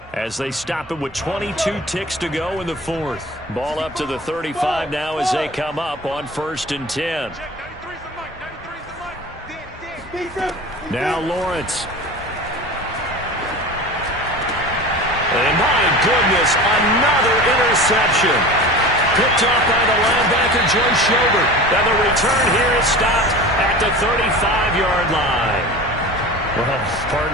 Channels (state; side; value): normal; both; correlation 0.35